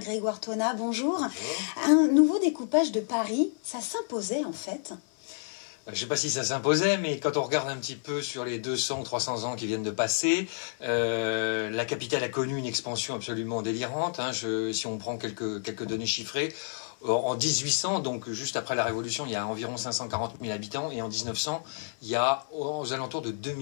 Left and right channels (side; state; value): right; silent; 58 dB below the other